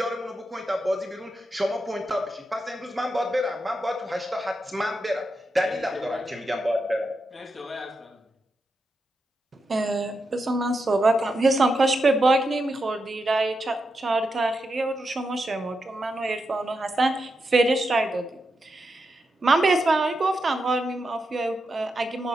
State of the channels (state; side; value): normal; both; correlation 0.86